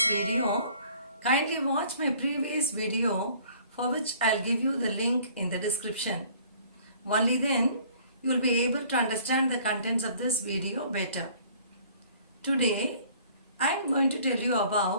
video, kindly watch my previous video for which I'll give you the link in the description. Only then you will be able to understand the contents of this video better. Today I am going to tell you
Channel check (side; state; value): both; inverted; correlation -0.54